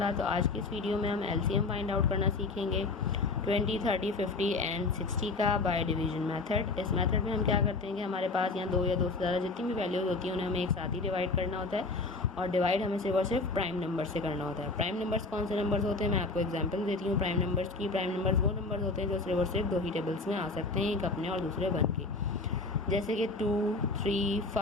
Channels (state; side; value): quieter; right; 3.6 dB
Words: तो आज की इस वीडियो में हम एलसीएम फाइंड आउट करना सीखेंगे 20, 30, 50 एंड 60 का बाय डिवीजन मेथड। इस मेथड में हम क्या करते हैं कि हमारे पास यहाँ दो या दो से ज़्यादा जितनी भी वैल्यूज़ होती हैं उन्हें हमें एक साथ ही डिवाइड करना होता है, और डिवाइड हमें सिर्फ और सिर्फ प्राइम नंबर से करना होता है। प्राइम नंबर्स कौन से नंबर्स होते हैं, मैं आपको एग्जांपल देती हूँ प्राइम नंबर्स की। प्राइम नंबर्स वो नंबर्स होते हैं जो सिर्फ और सिर्फ दो ही टेबल्स में आ सकते हैं, एक अपने और दूसरे वन के, जैसे कि 2, 3,